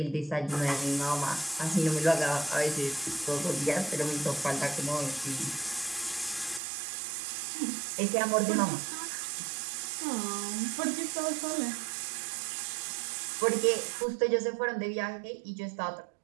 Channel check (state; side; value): drops out; left; at 6.6 s